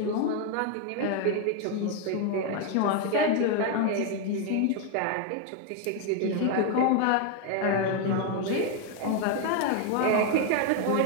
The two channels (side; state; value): both; different; correlation 0.01